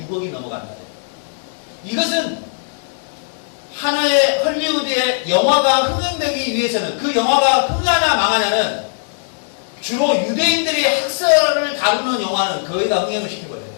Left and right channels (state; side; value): silent; right; digital silence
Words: 6억이 넘어갑니다. 이것은 하나의 헐리우드의 영화가 흥행되기 위해서는, 그 영화가 흥하냐 망하냐는 주로 유대인들이 학살을 다루는 영화는 거의 다 흥행을 시켜버려요.